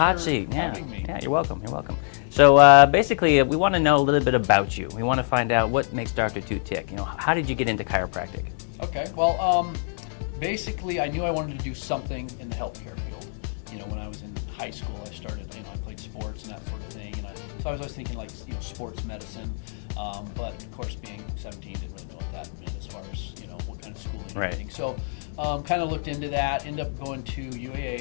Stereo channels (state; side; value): silent; right; digital silence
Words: seat. Having me. Yeah, you're welcome. You're welcome. So basically, we want to know a little bit about you. We want to find out what makes Dr. Tew tick. You know, how did you get into chiropractic? Okay. Well, basically, I knew I wanted to do something in the healthcare field. You know, when I was in high school, I started, I played sports and that sort of thing. And so I was always thinking like, sports medicine. But of course, being 17, didn't really know what that meant as far as, what kind of schooling and everything. So kind of looked into that, ended up going to